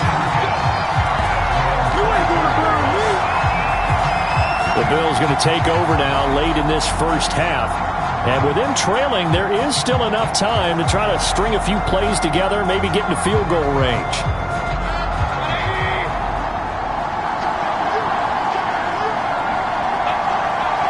The Bills going to take over now late in this first half. And with them trailing, there is still enough time to try to string a few plays together, maybe get into field goal range.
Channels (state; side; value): identical; both; correlation 1.00